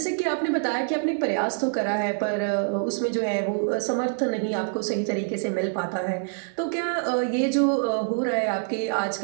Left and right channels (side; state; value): left; silent; 61 dB below the other